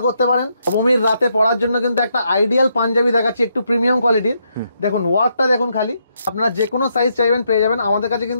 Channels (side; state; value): both; inverted; correlation -0.77